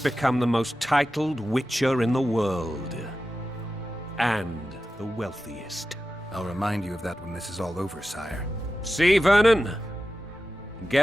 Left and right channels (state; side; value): normal; both; correlation 0.93